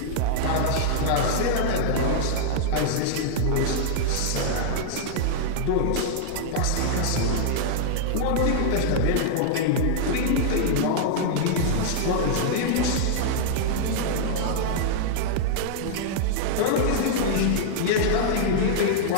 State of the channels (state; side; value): different; both; correlation -0.01